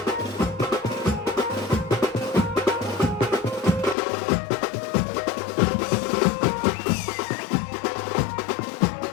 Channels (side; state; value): right; drops out; at 4.0 s